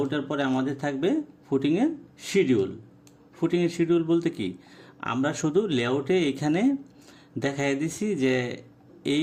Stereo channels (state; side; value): identical; both; correlation 1.00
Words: পরে আমাদের থাকবে ফুটিংয়ের শিডিউল বলতে কি, আমরা শুধু লেআউটে এখানে দেখাই দিছি যে